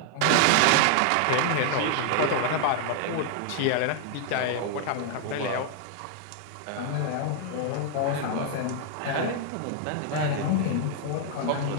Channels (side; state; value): both; different; correlation 0.00